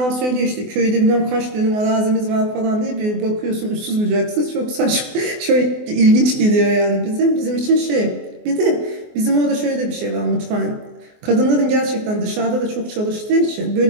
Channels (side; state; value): left; late; 24 ms